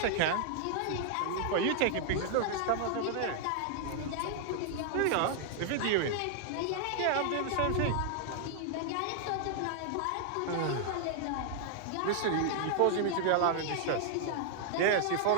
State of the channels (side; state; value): both; different; correlation -0.01